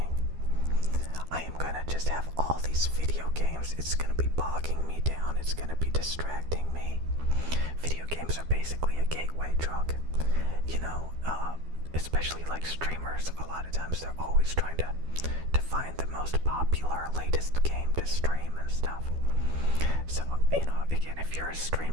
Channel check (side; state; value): left; late; 12 ms